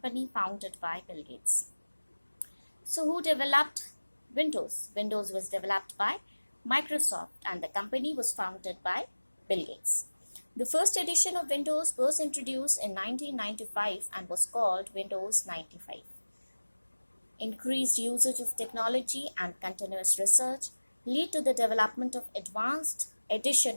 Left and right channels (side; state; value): both; inverted; correlation -1.00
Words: founded by Bill Gates. So who developed Windows? Windows was developed by Microsoft and the company was founded by Bill Gates. The first edition of Windows was introduced in 1995 and was called Windows 95. Increased usage of technology and continuous research lead to the development of advanced